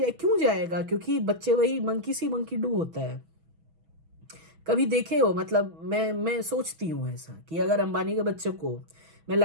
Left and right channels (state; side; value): late; left; 6.2 ms